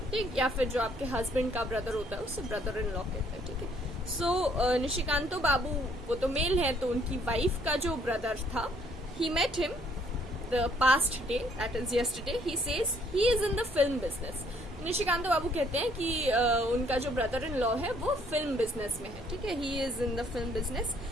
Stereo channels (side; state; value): both; normal; correlation 0.65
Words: ठीक, या फिर जो आपके हस्बैंड का ब्रदर होता है उसे ब्रदर इन लॉ कहते हैं. ठीक है, सो निशिकांतो बाबू वो तो मेल है, तो उनकी वाइफ का जो ब्रदर था he met him the past day, that is yesterday. He says he is in the film business. Nishikant Babu कहते हैं कि उनका जो ब्रदर इन लॉ है वो फिल्म बिजनेस में है, ठीक है. He is in the film business.